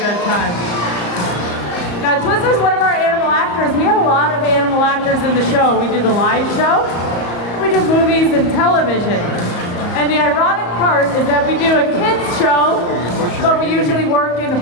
time. Now, Twizzler's one of our animal actors. We have a lot of animal actors in the show. We do the live show, we do movies and television. And the ironic part is that we do a kids show, but we usually work in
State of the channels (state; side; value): late; right; 34 ms